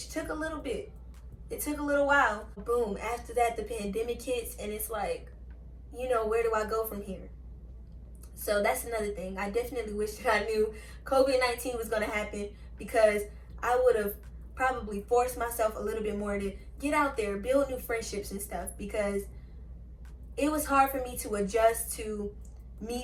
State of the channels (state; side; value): identical; both; correlation 1.00